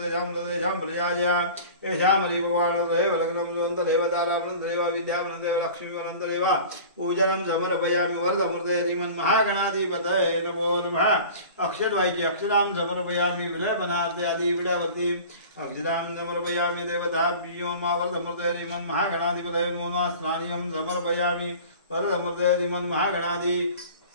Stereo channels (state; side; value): inverted; both; correlation -0.40